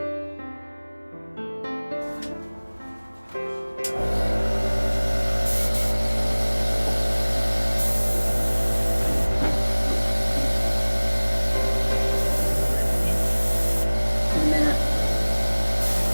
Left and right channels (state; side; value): inverted; both; correlation -1.00